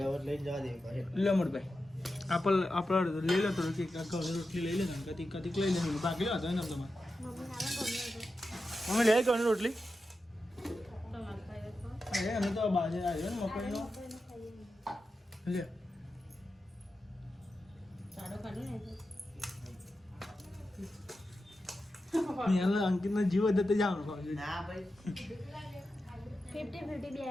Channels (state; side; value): normal; both; correlation 0.91